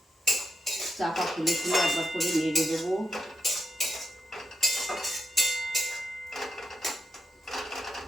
চাপা খুলে খুলে একবার করে নেড়ে দেবো।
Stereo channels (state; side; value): normal; both; correlation 0.83